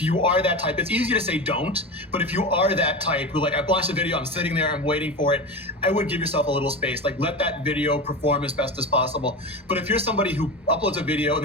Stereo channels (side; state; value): both; normal; correlation 0.24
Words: you are that type, it's easy to say don't, but if you are that type who like, I launched a video, I'm sitting there, I'm waiting for it, I would give yourself a little space. Like let that video perform as best as possible. But if you're somebody who uploads a video and